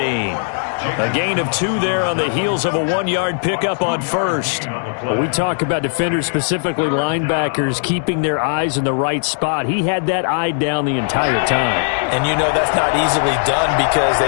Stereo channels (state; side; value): silent; right; digital silence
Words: A gain of 2 there on the heels of a 1-yard pickup on 1st. Well, we talk about defenders, specifically linebackers, keeping their eyes in the right spot. He had that eye down the entire time. And you know that's not easily done because